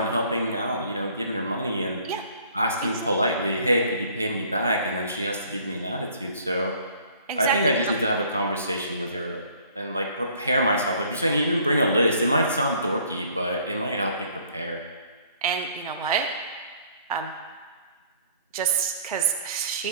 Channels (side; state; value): both; inverted; correlation -0.57